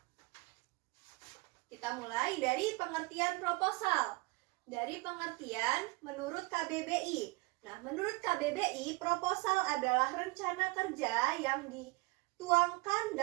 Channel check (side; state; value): left; quieter; 24.3 dB